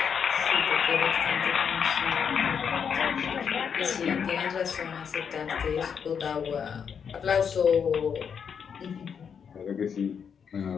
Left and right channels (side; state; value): right; quieter; 7.0 dB